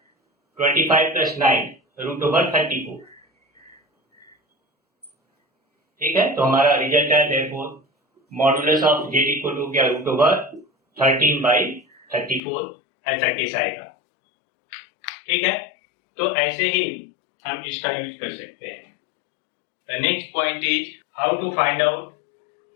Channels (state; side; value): drops out; right; at 12.4 s